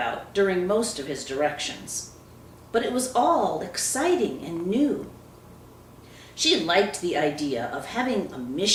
during most of his directions, but it was all exciting and new. She liked the idea of having a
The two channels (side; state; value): both; identical; correlation 1.00